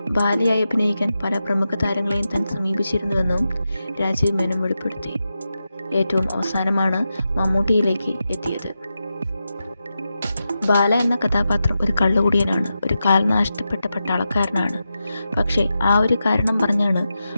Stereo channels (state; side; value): inverted; both; correlation -0.89